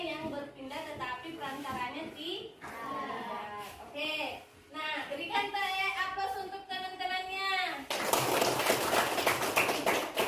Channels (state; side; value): identical; both; correlation 1.00